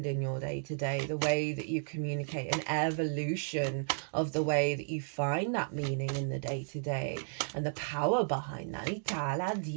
in your day-to-day, the way that you communicate, an evolution of the way that you find that meaning in the day-to-day and the power behind that.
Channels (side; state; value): left; silent; digital silence